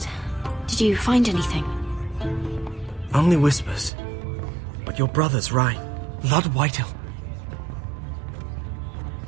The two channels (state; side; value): drops out; left; at 3.9 s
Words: Did you find anything? Only whispers. But your brother's right. Lord Whitehill.